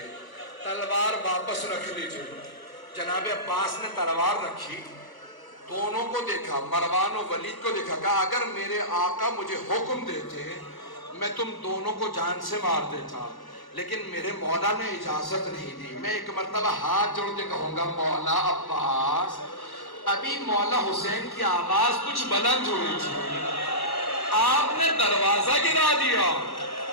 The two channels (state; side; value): late; right; 1.1 ms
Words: تلوار واپس رکھ لیجیے. جناب عباس نے تلوار رکھی، دونوں کو دیکھا، مروان و ولید کو دیکھا. کہا اگر میرے آقا مجھے حکم دیتے میں تم دونوں کو جان سے مار دیتا، لیکن میرے مولا نے اجازت نہیں دی. میں ایک مرتبہ ہاتھ جوڑ کے کہوں گا مولا عباس، ابھی مولا حسین کی آواز کچھ بلند ہوئی تھی، آپ نے دروازہ گرا دیا.